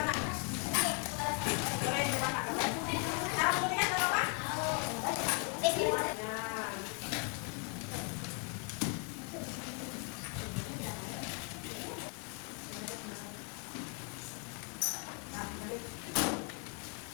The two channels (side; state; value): right; quieter; 37.8 dB